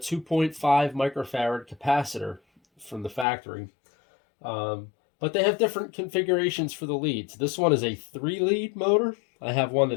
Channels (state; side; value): drops out; right; at 3.2 s